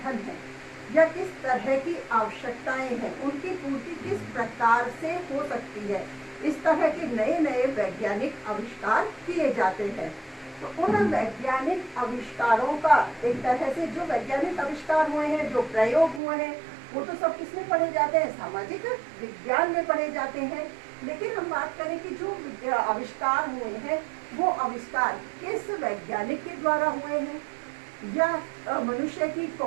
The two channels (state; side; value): drops out; left; at 16.2 s